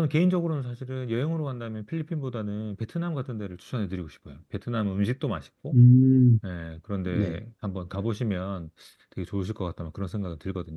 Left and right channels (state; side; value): identical; both; correlation 1.00